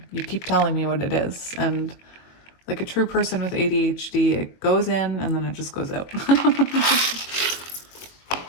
You keep telling me what it is. And like a true person with ADHD, it goes in and then it just goes out.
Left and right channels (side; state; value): right; late; 22 ms